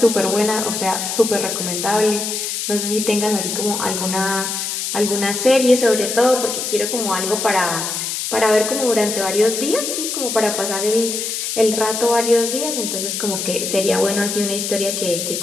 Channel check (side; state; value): left; noise; hiss, 3 dB below the sound